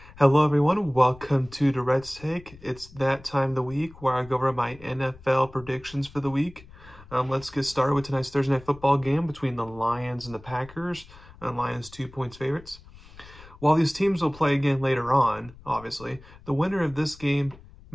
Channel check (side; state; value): left; noise; rumble, 21 dB below the sound